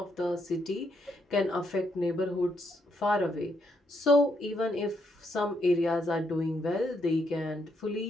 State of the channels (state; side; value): normal; both; correlation 0.76